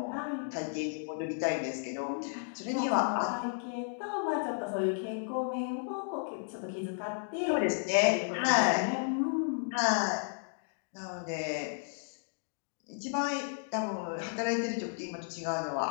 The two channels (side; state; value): right; silent; digital silence